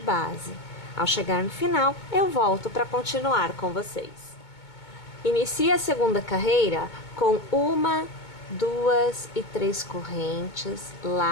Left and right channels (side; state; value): right; late; 2.2 ms